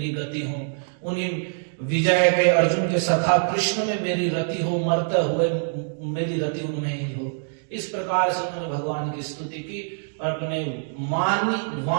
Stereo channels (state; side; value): silent; left; digital silence